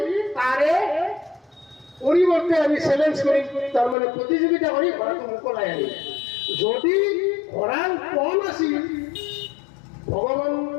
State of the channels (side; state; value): right; drops out; at 4.0 s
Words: তাৰে পৰিৱৰ্তে আমি চেলেঞ্জ কৰিম, তাৰমানে প্ৰতিযোগিতা কৰি ঘোঁৰাটো মোকলাই আনিম। যদি ঘোঁৰাৰ পণ আছিল, ভগৱান